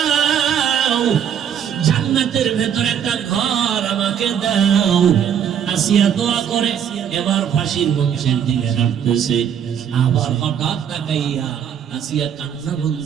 জান্নাতের ভেতর একটা ঘর আমাকে দাও। আসিয়া দোয়া করে এবার ফাঁসির মঞ্চের দিকে হাঁটতেছে। আবার হঠাৎ তাকাইয়া আসিয়া কান্না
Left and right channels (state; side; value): quieter; left; 8.7 dB